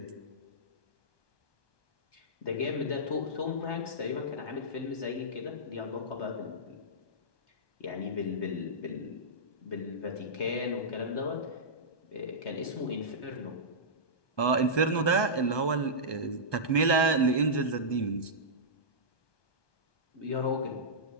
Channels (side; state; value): right; late; 1.2 ms